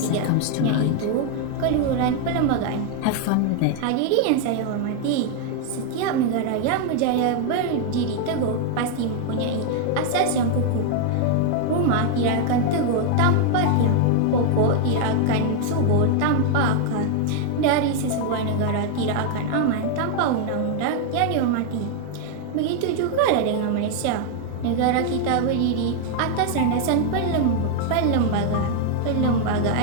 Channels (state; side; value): different; both; correlation 0.00